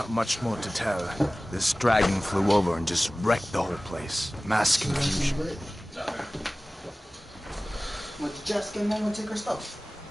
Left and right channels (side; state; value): both; normal; correlation 0.98